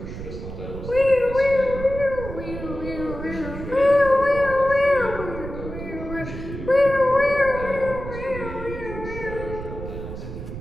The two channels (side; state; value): right; noise; rumble, 9 dB below the sound